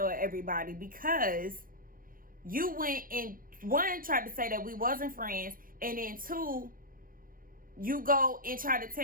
everybody because you went and, one, tried to say that we wasn't friends, and then two, you go and try to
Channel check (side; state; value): left; late; 0.41 ms